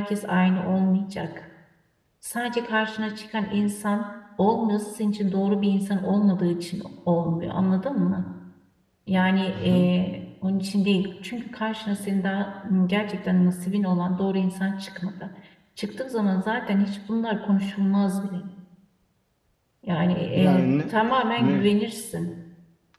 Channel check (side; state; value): both; identical; correlation 1.00